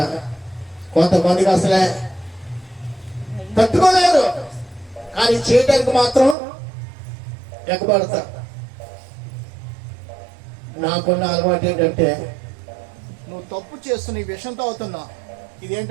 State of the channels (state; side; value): drops out; left; at 6.4 s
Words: కొంతమందికి అసలే తట్టుకోలేరు, కానీ చేయటానికి మాత్రం ఎగబడతా. నాకున్న అలవాటు ఏంటంటే, నువ్వు తప్పు చేస్తున్న ఈ విషం తాగుతున్నా,